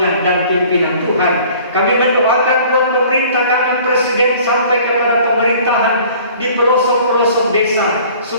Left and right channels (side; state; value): both; inverted; correlation -0.50